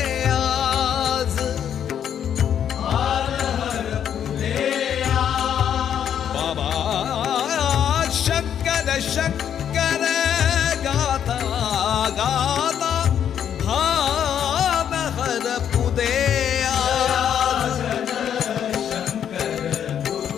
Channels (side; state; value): right; quieter; 9.1 dB